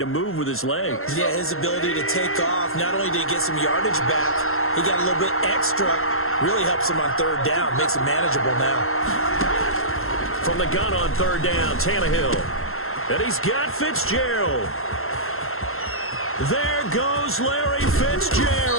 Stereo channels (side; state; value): right; late; 0.62 ms